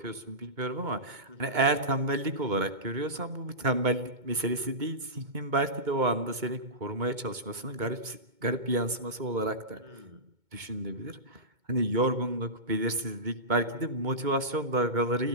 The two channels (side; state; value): left; late; 2.2 ms